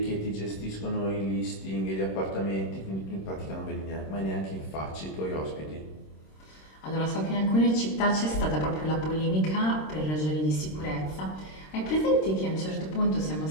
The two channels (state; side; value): late; right; 26 ms